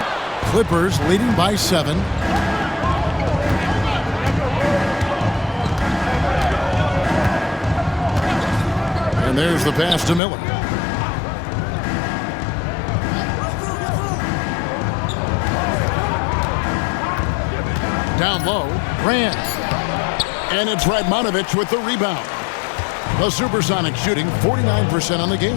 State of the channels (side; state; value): right; drops out; at 10.2 s